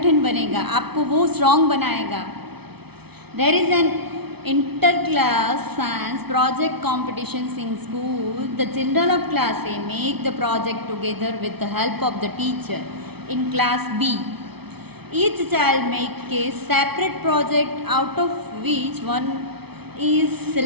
बनेगा, आपको वो स्ट्रॉन्ग बनाएगा. There is an inter class science project competitions in school. The children of class A make the project together with the help of the teacher. In class B each child make a separate project out of which one is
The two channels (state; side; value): late; left; 0.98 ms